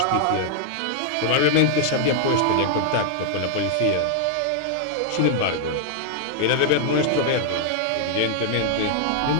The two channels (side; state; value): both; different; correlation 0.00